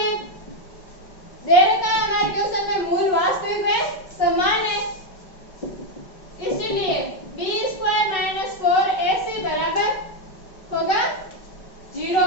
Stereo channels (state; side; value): late; right; 5.3 ms